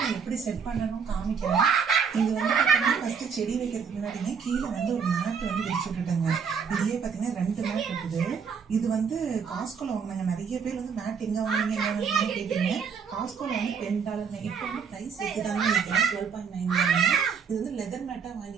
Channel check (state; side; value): quieter; left; 6.3 dB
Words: நான் எப்படி செட் பண்ணணும் காமிக்கிறேன். இது வந்து பார்த்தீங்கன்னா ஃபர்ஸ்ட் செடி வைக்கிறதுக்கு முன்னாடியே கீழே வந்து ஒரு மேட் வந்து விரிச்சு விட்டுட்டாங்க. இதுலயே பார்த்தீங்கன்னா 2 மேட் இருக்குது. இது வந்து காஸ்கோல வாங்கினாங்க. நிறைய பேர் வந்து மேட் எங்க வாங்கினீங்க கேட்டீங்க. காஸ்கோல வந்து $10. இப்போ வந்து ப்ரைஸ் இருக்குதான்னு நினைக்கிறேன் 12.9. இது வந்து லெதர் மேட்டா